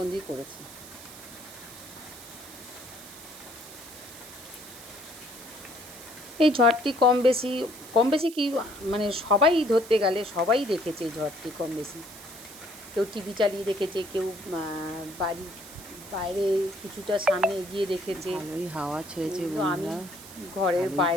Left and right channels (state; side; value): noise; right; hiss, 16 dB below the sound